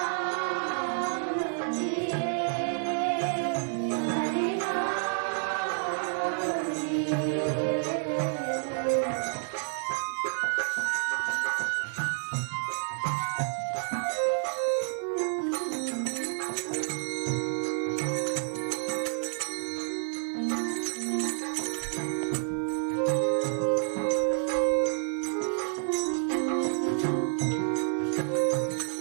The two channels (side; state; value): left; silent; 56 dB below the other